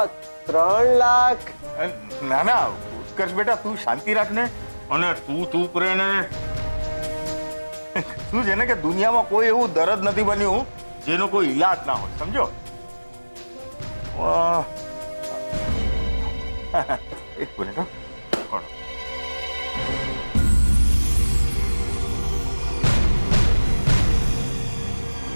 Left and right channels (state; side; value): inverted; both; correlation -1.00